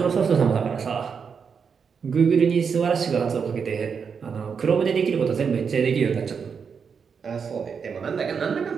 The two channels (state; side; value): quieter; left; 6.2 dB